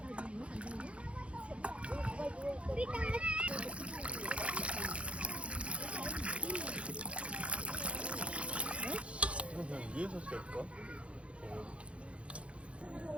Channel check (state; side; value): late; left; 0.061 ms